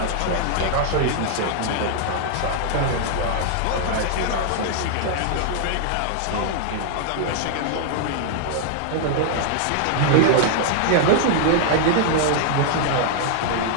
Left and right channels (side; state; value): both; different; correlation -0.01